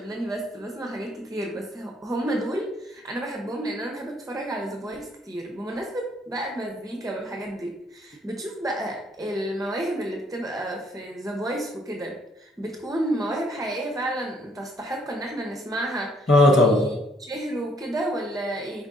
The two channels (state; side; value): normal; both; correlation 0.66